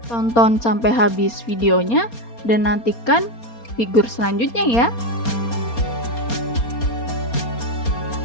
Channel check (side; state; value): right; late; 4.3 ms